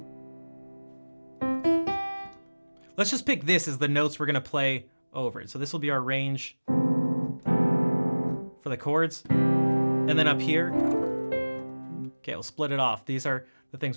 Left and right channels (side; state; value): both; inverted; correlation -1.00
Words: Let's just pick this as the notes we're gonna play over it. So this will be our range for the chords. And then up here, okay, we'll split it off. These are the